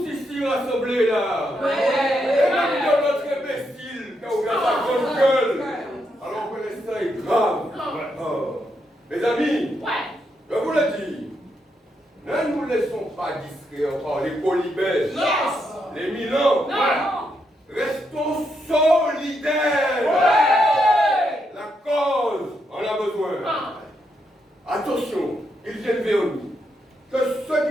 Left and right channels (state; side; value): normal; both; correlation 0.80